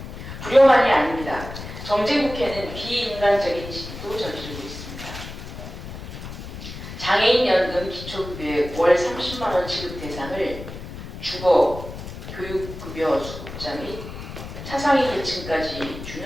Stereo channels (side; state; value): left; noise; rumble, 11 dB below the sound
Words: 불효만이 아닙니다. 정쟁국회는 비인간적인 시기도 저지르고 있습니다. 장애인 연금 기초급여의 월 30만 원 지급 대상을 주거, 교육급여 수급자 및 차상위 계층까지